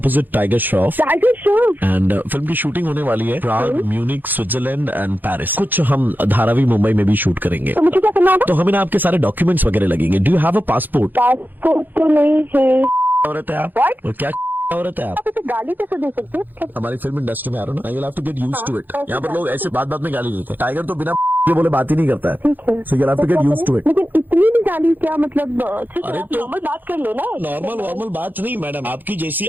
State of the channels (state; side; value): late; left; 0.088 ms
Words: tiger Shroff tiger Shroff. And film की शूटिंग होने वाली है प्राग, म्यूनिक, स्विट्जरलैंड एंड पेरिस। कुछ हम धारावी मुंबई में भी शूट करेंगे। तो मुझे क्या करना होगा? तो हमें ना आपके सारे डॉक्यूमेंट्स वगैरह लगेंगे। Do you have a passport? Passport तो नहीं है। औरत है आप? What? और क्या औरत है आप? आप इसे गाली कैसे दे सकते हैं? हमारी फिल्म इंडस्ट्री में आ रहा हूँ ना, you have to get used to it. यहाँ पर लोग ऐसे बात में गाली देते हैं। टाइगर तो बिना के बोले बात ही नहीं करता है। ठीक है। So you have to get used to it. लेकिन इतनी भी गाली क्या मतलब? ठीक है अरे आप तो- नॉर्मल बात कर लो ना। नॉर्मल बात नहीं मैडम, आपकी जैसी